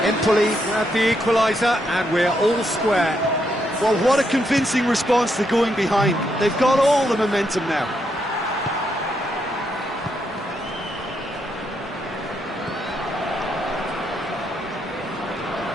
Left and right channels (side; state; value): both; normal; correlation 0.78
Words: EMPOLI grab the equaliser, and we're all square. Well, what a convincing response to going behind. They've got all the momentum now.